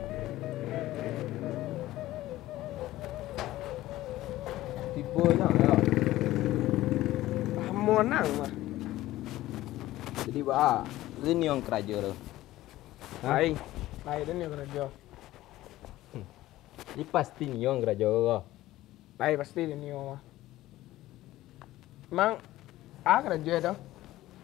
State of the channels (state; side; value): quieter; right; 15.9 dB